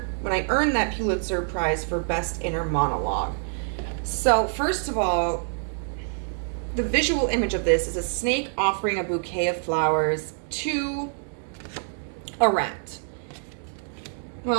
Prize for Best Inner Monologue. So, first of all, the visual image of this is a snake offering a bouquet of flowers to a rat.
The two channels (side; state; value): left; silent; 61 dB below the other